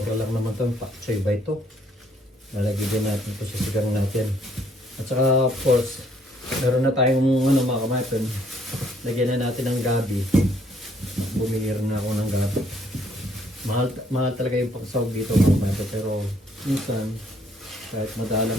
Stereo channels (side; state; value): both; normal; correlation 0.66